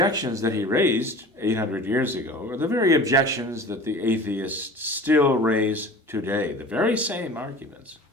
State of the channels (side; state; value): both; normal; correlation 0.40